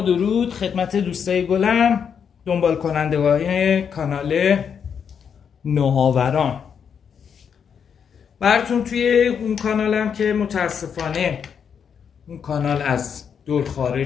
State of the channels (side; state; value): right; quieter; 7.3 dB